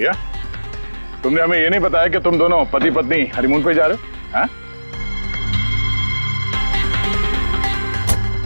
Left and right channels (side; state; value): both; inverted; correlation -1.00